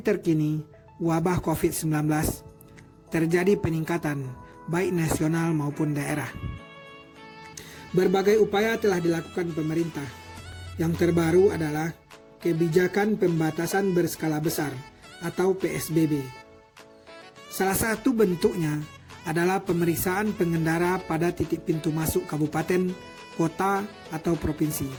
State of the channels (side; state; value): both; identical; correlation 1.00